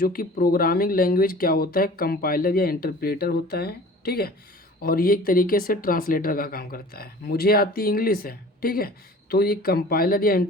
कि प्रोग्रामिंग लैंग्वेज क्या होता है? कंपाइलर या इंटरप्रेटर होता है, ठीक है। और ये एक तरीके से ट्रांसलेटर का काम करता है। मुझे आती इंग्लिश है, ठीक है। तो ये कंपाइलर या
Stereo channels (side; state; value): both; normal; correlation 0.44